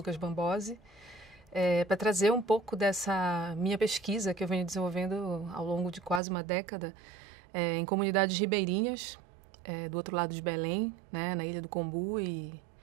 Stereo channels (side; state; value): left; drops out; at 6.2 s